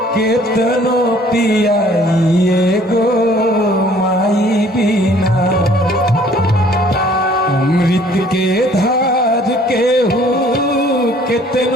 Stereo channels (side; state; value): both; normal; correlation 0.57